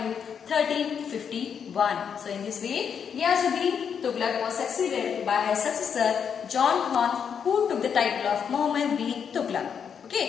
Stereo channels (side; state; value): right; quieter; 7.3 dB